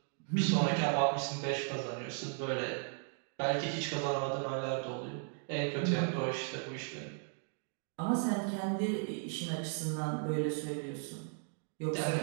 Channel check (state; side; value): silent; left; 54 dB below the other